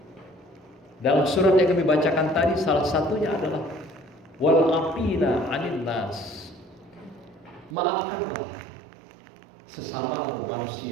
dalam surat yang kami bacakan tadi. Salah satunya adalah wal afina anin nas, maafkanlah sesamamu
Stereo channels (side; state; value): left; drops out; at 7.8 s